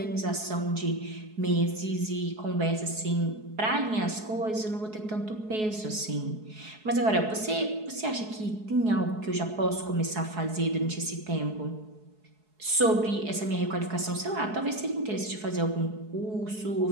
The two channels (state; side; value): late; left; 4.7 ms